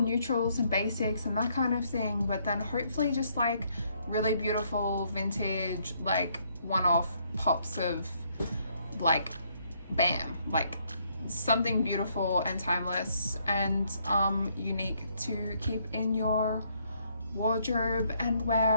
and basics and that kind of thing, but then hopefully just like really beautiful vintage, like one-off pops of like bam, like something beautiful and timeless and unique to keep in your wardrobe and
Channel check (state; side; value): inverted; both; correlation -0.70